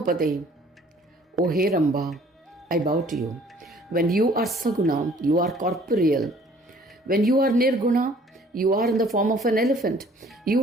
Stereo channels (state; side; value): normal; both; correlation 0.56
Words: O Heramba, I bow to you. When you are Saguna, you are corporeal. When you are Nirguna, you are in the form of an elephant.